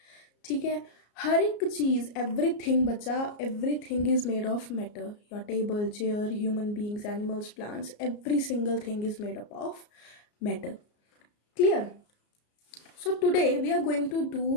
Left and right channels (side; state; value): right; late; 34 ms